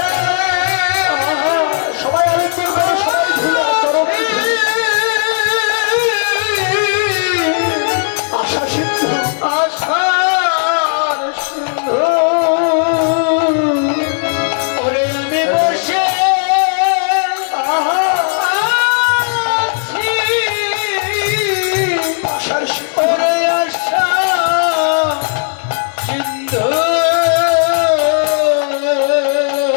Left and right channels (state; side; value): silent; right; digital silence